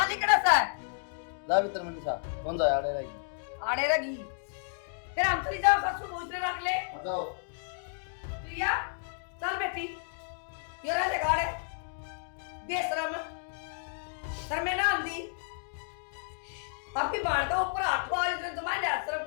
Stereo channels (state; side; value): silent; right; digital silence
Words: लिखड़ा सा है। जा भीतर में निशा, कौन सा आड़े रहेगी? आड़े रगी फिर हम चली जाओ, ससुर भोजने रख ले। जाओ प्रिया चल बेटी, ये रह ले गाड़े बेशरम सर में ना आंदी। आपकी बाण का ऊपर आठवा इसने जमा लिया, शर्म